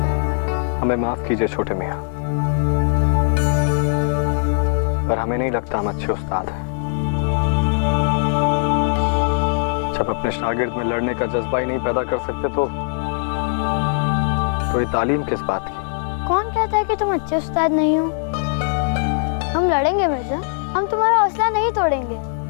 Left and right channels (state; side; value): silent; right; digital silence